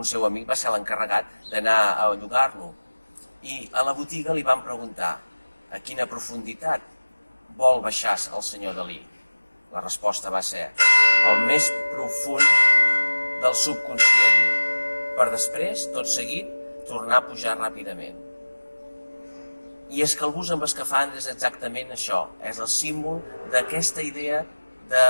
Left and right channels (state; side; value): inverted; both; correlation -1.00